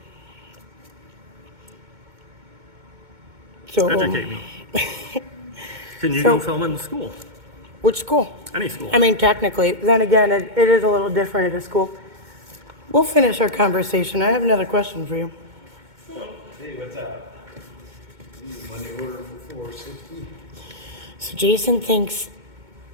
So, Educate me. Can you So- go film in the school? Which school? Any school. Technically. Then again, it is a little different at a school. We'll finish our conversation. I have another question for you. Hey, what's up? Money order for 460? So Jason thinks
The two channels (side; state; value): left; late; 2.2 ms